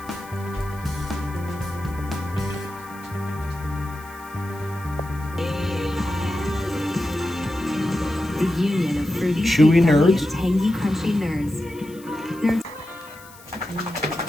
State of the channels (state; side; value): noise; left; hiss, 22 dB below the sound